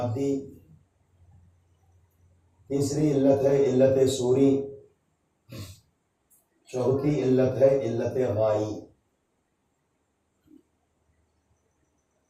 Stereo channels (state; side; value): identical; both; correlation 1.00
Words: تیسری علت ہے علت صوری. چوتھی علت ہے علت غائی.